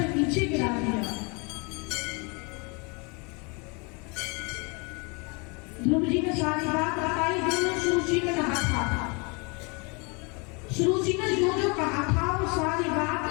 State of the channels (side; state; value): right; quieter; 31.2 dB